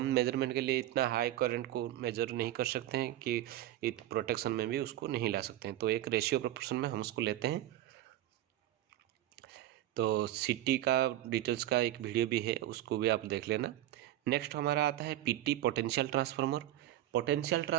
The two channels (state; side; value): quieter; left; 13.9 dB